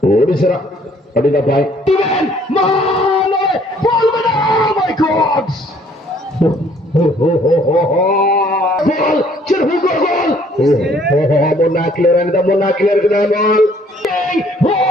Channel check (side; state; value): both; normal; correlation 0.61